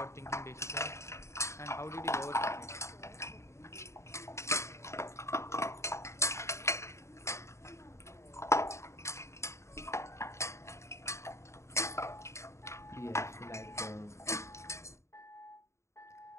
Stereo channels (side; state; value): right; late; 0.14 ms